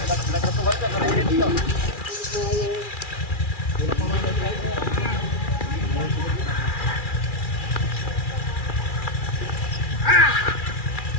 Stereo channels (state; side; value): late; right; 2.4 ms